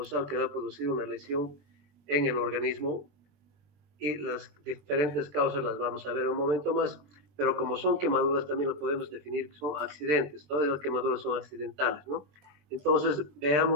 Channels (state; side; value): late; left; 20 ms